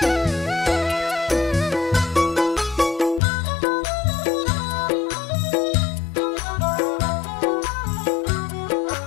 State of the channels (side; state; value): right; drops out; at 3.2 s